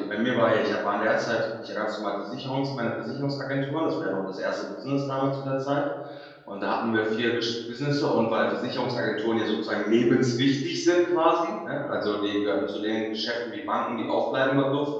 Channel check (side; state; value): both; identical; correlation 1.00